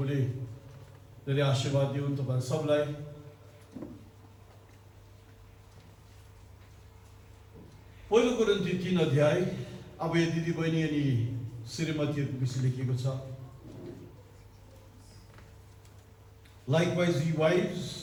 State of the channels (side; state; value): both; identical; correlation 1.00